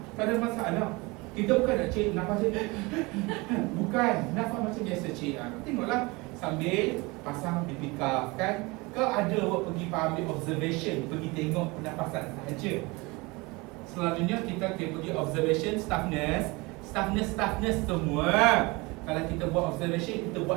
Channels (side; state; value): left; quieter; 24.8 dB